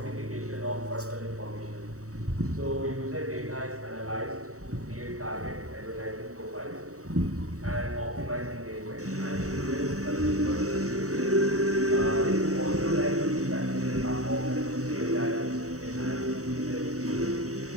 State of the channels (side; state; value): left; late; 0.65 ms